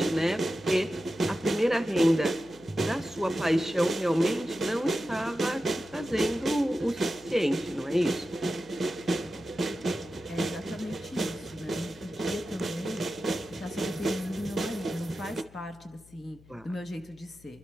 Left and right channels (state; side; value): noise; left; hum, 24 dB below the sound